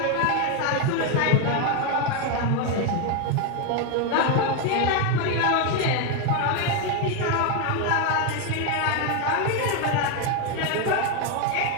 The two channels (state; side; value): different; both; correlation 0.02